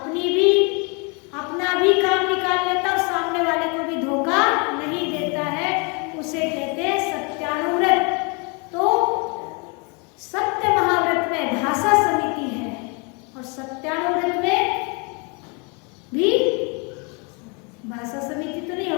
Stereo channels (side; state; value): right; quieter; 33.0 dB